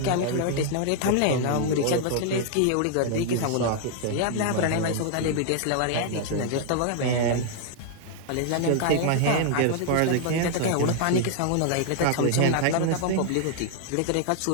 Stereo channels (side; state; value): both; different; correlation 0.00